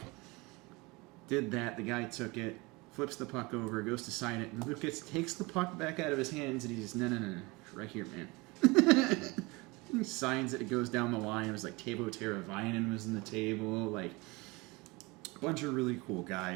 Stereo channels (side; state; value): left; quieter; 24.8 dB